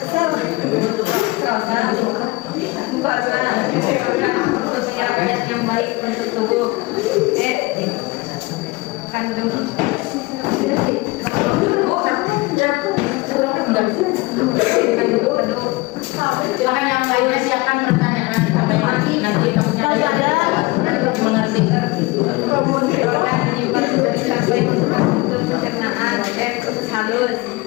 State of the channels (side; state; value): right; quieter; 22.9 dB